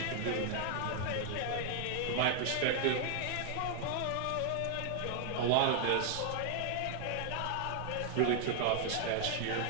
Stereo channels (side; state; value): both; different; correlation 0.00